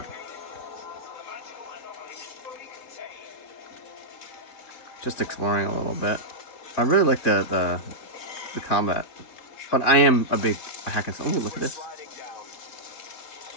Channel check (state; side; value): late; right; 3.6 ms